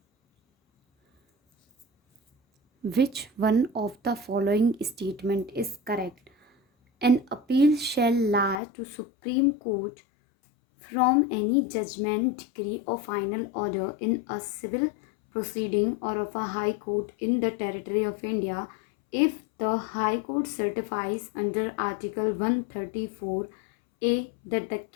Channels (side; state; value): right; drops out; at 8.6 s